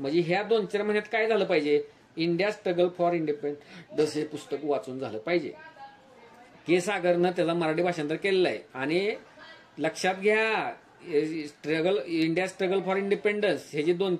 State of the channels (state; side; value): identical; both; correlation 1.00